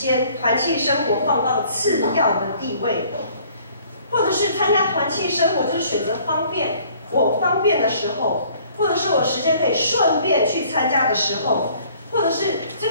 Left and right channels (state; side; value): inverted; both; correlation -0.57